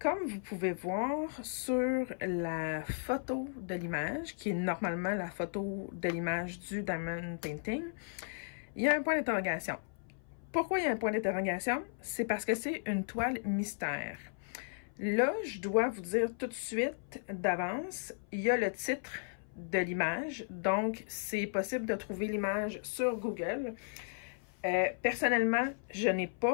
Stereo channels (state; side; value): silent; right; 54 dB below the other